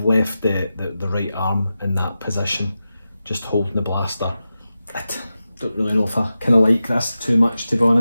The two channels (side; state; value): both; inverted; correlation -0.92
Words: left the right arm in that position, just holding the blaster. I don't really know if I kind of like this too much, to be